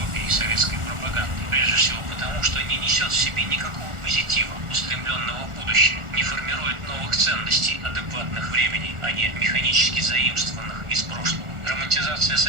советской пропаганды. Прежде всего потому, что не несет в себе никакого позитива, устремленного в будущее, не формирует новых ценностей, адекватных времени, а не механически заимствованных из прошлого. Романтизация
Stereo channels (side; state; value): left; late; 1.4 ms